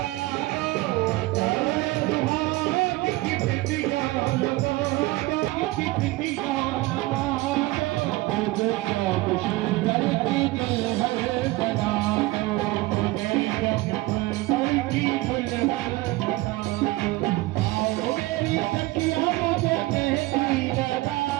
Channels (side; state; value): left; quieter; 19.9 dB